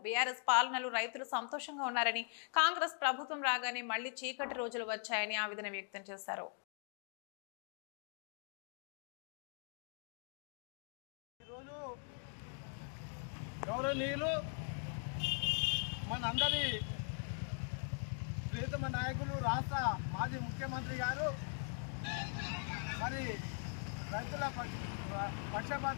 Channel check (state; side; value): silent; right; 50 dB below the other